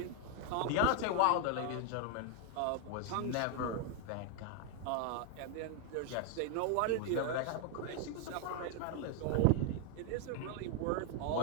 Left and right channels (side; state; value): both; different; correlation 0.00